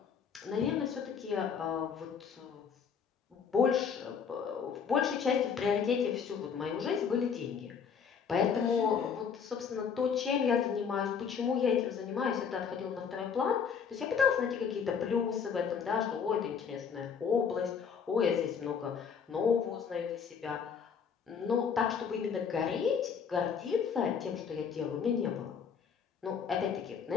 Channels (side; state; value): right; quieter; 6.7 dB